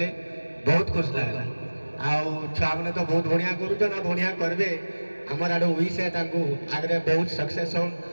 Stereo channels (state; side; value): inverted; both; correlation -1.00